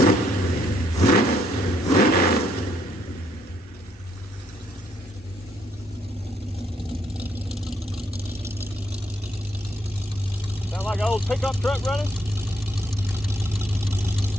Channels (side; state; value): both; normal; correlation 0.71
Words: Sound like an old pickup truck running?